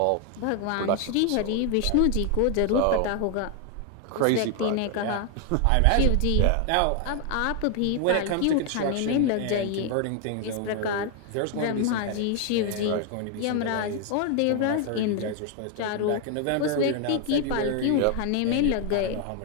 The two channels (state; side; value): different; both; correlation 0.00